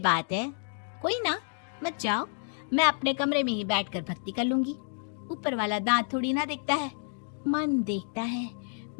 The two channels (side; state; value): right; silent; digital silence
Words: है। कोई ना, मत जाओ, मैं अपने कमरे में ही बैठकर भक्ति कर लूंगी। ऊपर वाला दांत थोड़ी ना देखता है, मन देखता है,